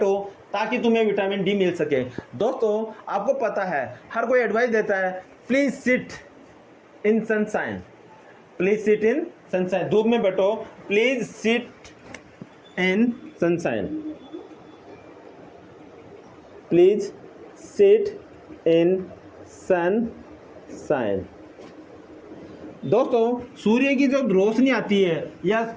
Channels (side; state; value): both; identical; correlation 1.00